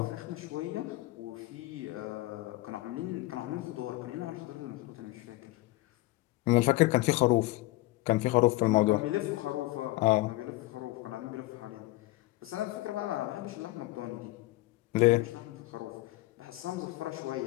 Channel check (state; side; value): quieter; right; 19.1 dB